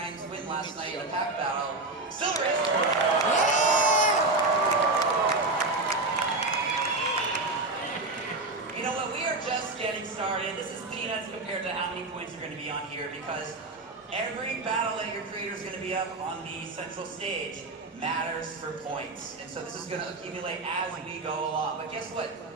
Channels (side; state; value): left; quieter; 3.2 dB